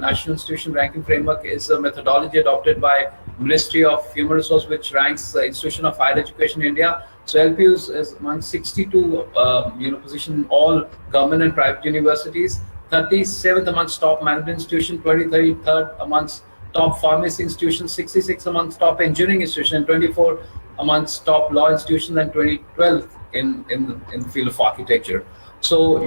Institution Ranking Framework is a methodology adopted by Ministry of Human Resources, which ranks the institution of higher education in India. So LPU is among 62 position in all government and private universities, 37th amongst top management institution, 23rd amongst top pharmacy institutions, 66 amongst top engineering institution, and 24 amongst top law institutions, and 12th in the field of architecture. So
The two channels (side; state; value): both; inverted; correlation -1.00